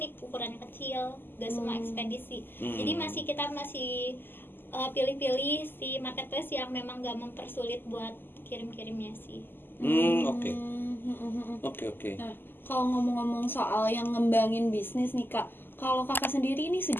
ukurannya kecil, nggak semua ekspedisi. Jadi kita masih pilih-pilih si marketplace yang memang nggak mempersulit buat kirim-kirimnya sih. Oke. Nah, kalau ngomong-ngomong soal yang ngembangin bisnis nih Kak, kalau Kakak sendiri ini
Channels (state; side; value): late; right; 0.096 ms